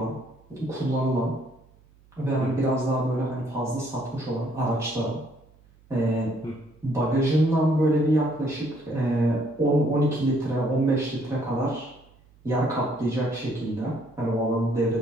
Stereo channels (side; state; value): right; noise; hum, 29 dB below the sound